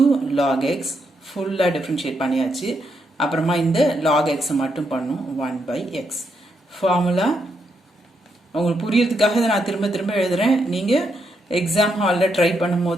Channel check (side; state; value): both; normal; correlation 0.79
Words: log x ஃபுல்லா டிஃபரன்ஷியேட் பண்ணியாச்சு அப்புறமா இந்த log x மட்டும் பண்ணும் 1 by x ஃபார்முலா உங்களுக்கு புரியறதுக்காக நான் திரும்ப திரும்ப எழுதுறேன் நீங்க எக்ஸாம் ஹால்ல ட்ரை